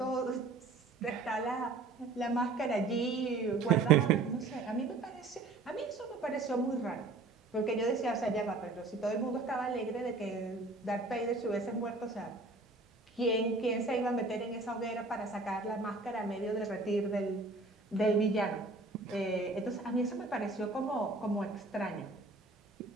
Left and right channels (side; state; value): left; quieter; 3.6 dB